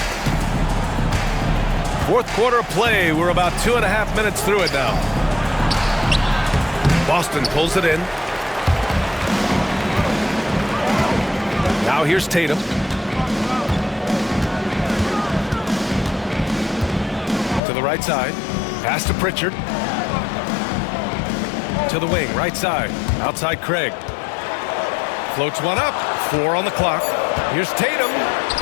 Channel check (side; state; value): right; drops out; at 17.6 s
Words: Fourth quarter play. We're about 2.5 minutes through it now. Boston pulls it in. Now here's Tatum. To the right side. Pass to Pritchard. To the wing, right side. Outside Craig. Floats one up. 4 on the clock. Here's Tatum.